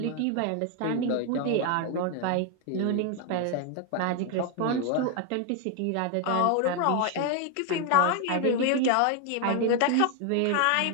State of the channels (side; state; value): both; different; correlation 0.01